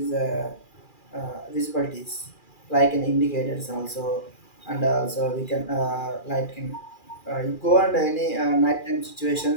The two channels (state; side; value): late; right; 2.4 ms